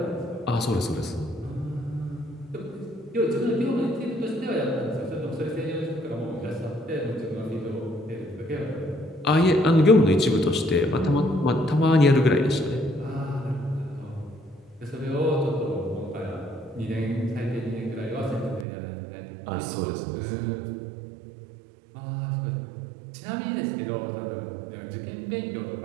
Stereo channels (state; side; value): drops out; left; at 18.7 s